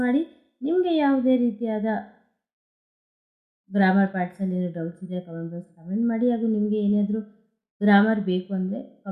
ಮಾಡಿ. ನಿಮಗೆ ಯಾವುದೇ ರೀತಿಯಾದ ಗ್ರಾಮರ್ ಪಾರ್ಟ್ಸಲ್ಲಿ ಏನೋ ಡೌಟ್ಸ್ ಇದೆ ಕಮೆಂಟ್ ಮಾಡಿ. ಹಾಗೂ ನಿಮಗೆ ಏನಾದರೂ ಗ್ರಾಮರ್ ಬೇಕು ಅಂದರೆ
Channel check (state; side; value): identical; both; correlation 1.00